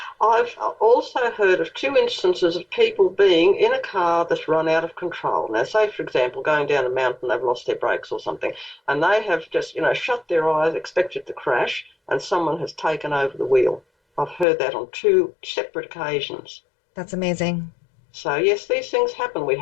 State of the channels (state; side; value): drops out; right; at 14.5 s